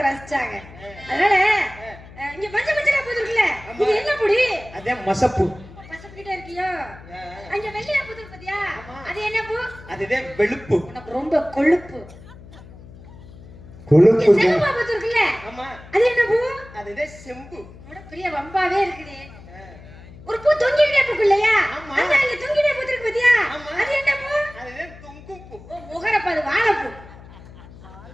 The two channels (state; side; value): noise; left; hum, 19 dB below the sound